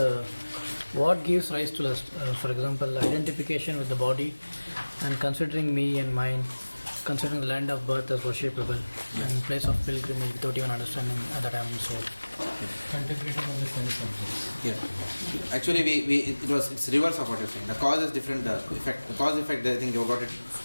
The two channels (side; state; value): both; inverted; correlation -1.00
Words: what gives rise to lust. For example, identification with the body and considering me and mine, considering the land of birth as worshipable and place of pilgrimage without even understanding that I am soul. Contemplating on the sense objects. Yeah. Actually, it's reverse of what you're saying. The cause is different. The cause effect. I think you got it.